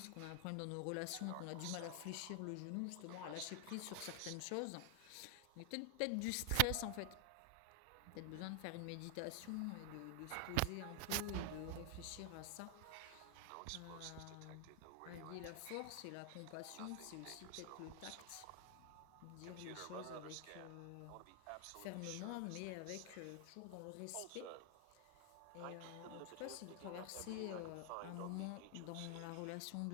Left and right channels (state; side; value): different; both; correlation 0.00